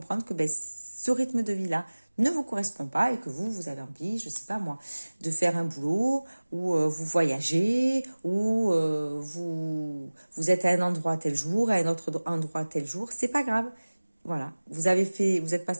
que ben, ce rythme de vie-là ne vous correspond pas et que vous avez envie, je sais pas moi, de faire un boulot où vous voyagez, où vous êtes à un endroit tel jour, à un autre endroit tel jour, c'est pas grave. Voilà, vous êtes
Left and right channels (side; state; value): both; inverted; correlation -1.00